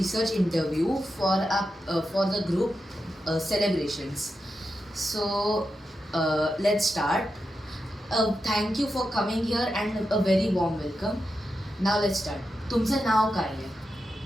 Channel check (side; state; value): both; normal; correlation 0.88